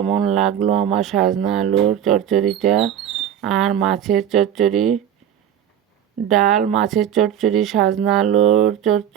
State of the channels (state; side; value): quieter; left; 9.7 dB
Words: লাগলো আমার সাজনা আলুর চচ্চড়িটা। আর মাছের চচ্চড়ি, ডাল, মাছের চচ্চড়ি, সাজনা আলুর